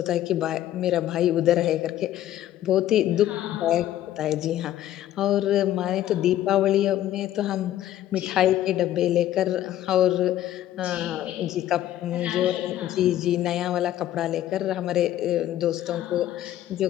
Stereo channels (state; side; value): quieter; right; 12.8 dB